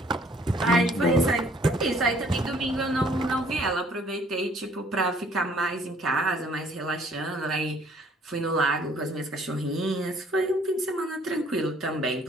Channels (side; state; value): both; normal; correlation 0.60